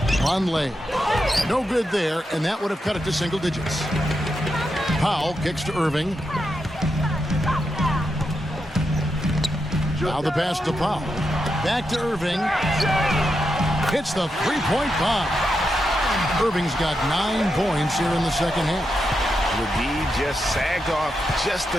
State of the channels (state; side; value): normal; both; correlation 0.86